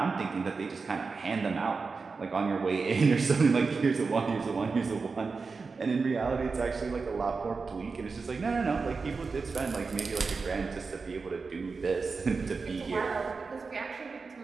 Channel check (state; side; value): quieter; left; 4.5 dB